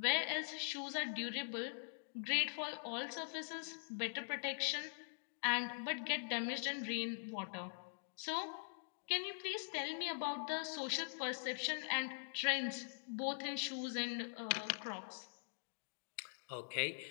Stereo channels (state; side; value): silent; right; digital silence